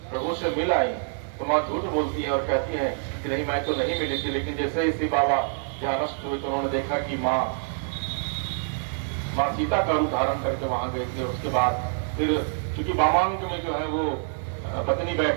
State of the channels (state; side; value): silent; left; digital silence